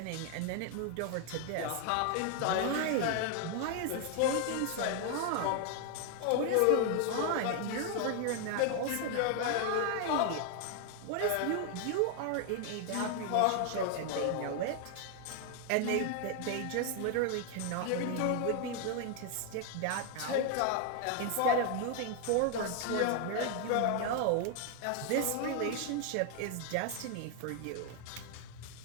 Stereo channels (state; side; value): different; both; correlation 0.00